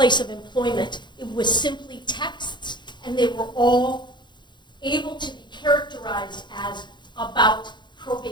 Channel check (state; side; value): late; right; 0.22 ms